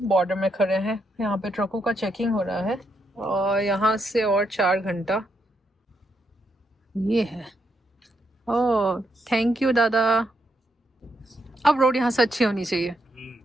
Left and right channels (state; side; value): normal; both; correlation 0.79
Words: बॉर्डर में खड़े हैं। यहाँ पे ट्रकों का चेकिंग हो रहा है और यहाँ से और 4 घंटा ये है। ओह थैंक यू दादा। अब रोड यहाँ से अच्छी होनी चाहिए।